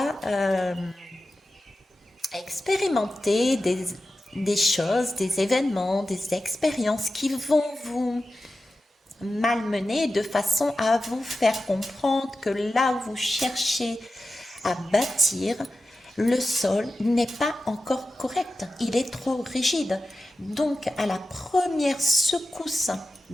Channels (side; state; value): both; normal; correlation 0.92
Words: expérimenter des choses, des événements, des expériences qui vont vous malmener de façon à vous faire comprendre que là où vous cherchez à bâtir, le sol n'est pas encore correct, il est trop rigide. Donc, à la première secousse